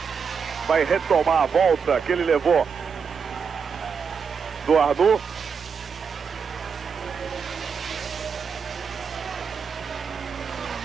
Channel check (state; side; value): quieter; left; 6.1 dB